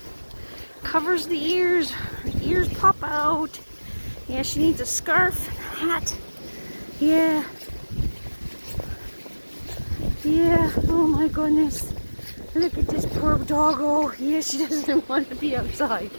Covers the ears. Her ears pop out. Yeah, she needs a scarf, hat. Yeah. Yeah. Oh my goodness. Look at this poor doggo. Yeah, she doesn't want to be outside.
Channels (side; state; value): both; inverted; correlation -1.00